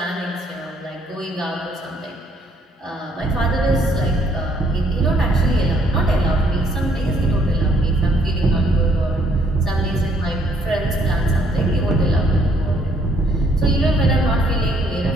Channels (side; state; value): both; normal; correlation 0.67